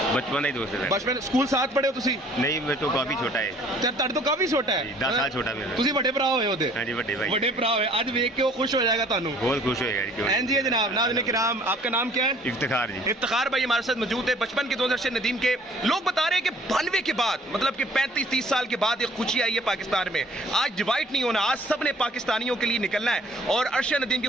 ਬਚਪਨ ਦਾ ਹੀ ਦੋਸਤ ਹੈ। ਬਚਪਨ ਸਕੂਲ ਸਾਥ ਪੜ੍ਹੇ ਹੋ ਤੁਸੀਂ? ਨਹੀਂ, ਮੇਰੇ ਤੋਂ ਕਾਫੀ ਛੋਟਾ ਹੈ। ਤੇ ਤੁਹਾਡੇ ਤੋਂ ਕਾਫੀ ਛੋਟਾ ਹੈ? 10 ਸਾਲ ਛੋਟਾ ਮੇਰਾ। ਤੁਸੀਂ ਵੱਡੇ ਭਰਾ ਹੋਏ ਉਹਦੇ? ਹਾਂਜੀ ਵੱਡੇ भाई। ਵੱਡੇ ਭਰਾ ਹੋਏ, ਅੱਜ ਵੇਖ ਕੇ ਉਹ ਖੁਸ਼ ਹੋ जाएगा ਤੁਹਾਨੂੰ? बहुत खुश होएगा जी। क्यों नहीं? जी जनाब। नाज़रीन किराम, आपका नाम क्या है? इफ्तिखार जी। इफ्तिखार भाई हमारे साथ मौजूद है, बचपन के दोस्त अरशद नदीम के। लोग बता रहे हैं कि 92 के बाद, मतलब कि 35-30 साल के बाद एक खुशी आई है पाकिस्तान में। आज डिवाइड नहीं होना, आज सब ने पाकिस्तानियों के लिए निकलना है और अरशद नदीम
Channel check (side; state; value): both; normal; correlation 0.55